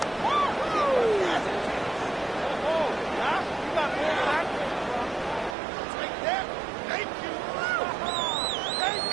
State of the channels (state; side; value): drops out; left; at 5.6 s